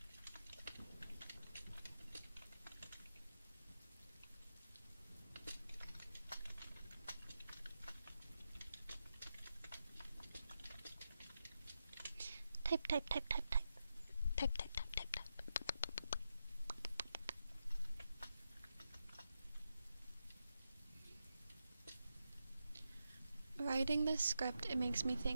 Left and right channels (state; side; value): inverted; both; correlation -0.88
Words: Type. Writing this script, it makes me